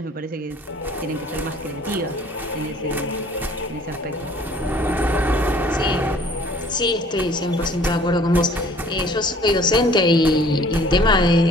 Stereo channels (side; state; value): both; normal; correlation 0.54